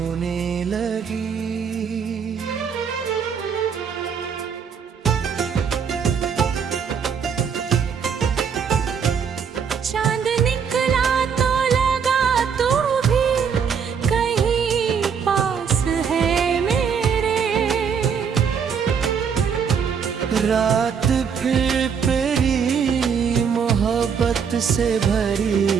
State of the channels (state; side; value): quieter; left; 6.7 dB